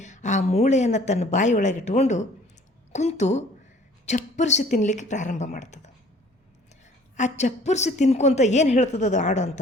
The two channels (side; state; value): both; normal; correlation 0.53